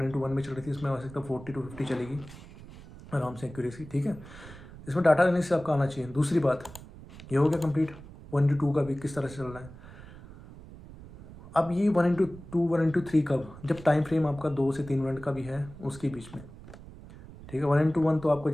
में चल रही थी, इसमें आ सकता है 40-50 चलेगी आराम से एक्यूरेसी, ठीक है। इसमें डाटा लेने से आपका आना चाहिए। दूसरी बात, ये हो गया कंप्लीट 1:2 का भी किस तरह से चल रहा है। अब ये 1:2 1:3 कब, जब टाइम फ्रेम आपका 2 से 3 मिनट का भी है उसके बीच में, ठीक है। 1:1 तो आपको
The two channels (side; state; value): right; noise; rumble, 17 dB below the sound